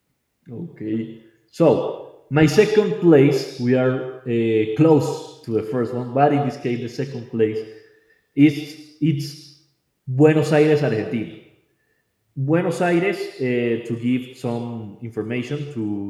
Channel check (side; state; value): both; identical; correlation 1.00